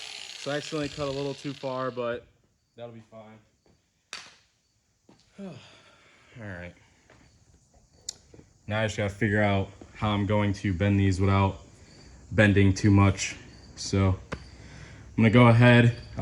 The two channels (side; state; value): both; identical; correlation 1.00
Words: So I accidentally cut a little too far, but that'll be fine. All right. Now I just gotta figure out how I'm going to bend these without bending too much. So I'm gonna go ahead,